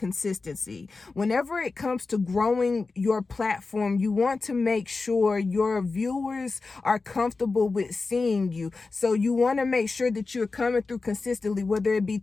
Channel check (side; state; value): right; quieter; 3.9 dB